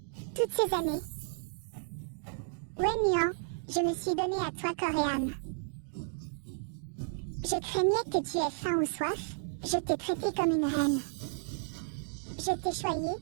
Toutes ces années, Wenyan, je me suis donné à toi corps et âme. Je craignais que tu aies faim ou soif, je t'ai traité comme une reine. Je t'ai choyé,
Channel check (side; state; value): left; silent; digital silence